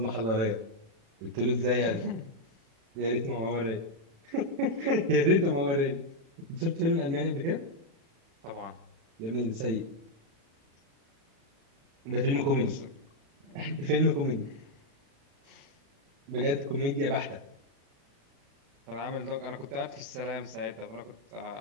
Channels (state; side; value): late; left; 36 ms